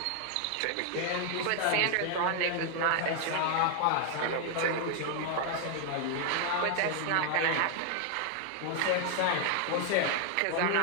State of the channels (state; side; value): different; both; correlation 0.00